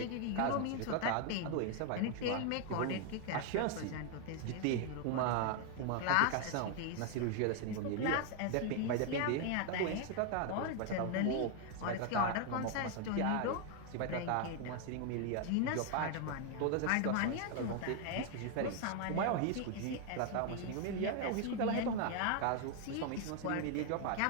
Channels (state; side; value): different; both; correlation 0.00